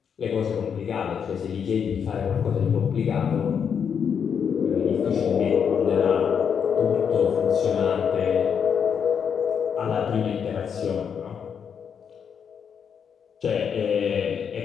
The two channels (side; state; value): right; quieter; 7.3 dB